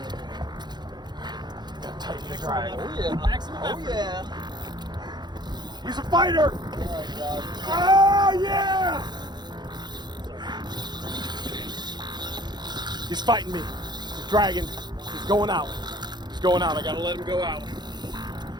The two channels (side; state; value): left; late; 0.21 ms